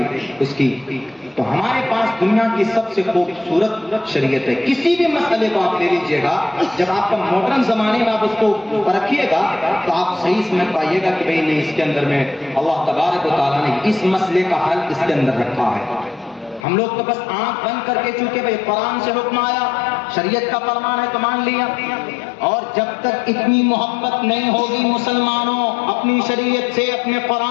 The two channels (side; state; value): right; drops out; at 16.7 s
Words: اس کی۔ تو ہمارے پاس دنیا کی سب سے خوبصورت شریعت ہے۔ کسی بھی مسئلے کو آپ لے لیجئے گا، جب آپ کا ماڈرن زمانے میں آپ اس کو پرکھیے گا تو آپ صحیح سمجھ پائیے گا کہ بھئی نہیں، اس کے اندر میں اللہ تبارک و تعالیٰ نے اس مسئلے کا حل اس کے اندر رکھا ہے۔ ہم لوگ تو بس آنکھ بند کر کے، چونکہ بھئی قرآن سے حکم آیا، شریعت کا فرمان ہے تو مان لیا، اور جب تک اتنی محبت نہیں ہوگی مسلمانوں اپنی شریعت سے، اپنے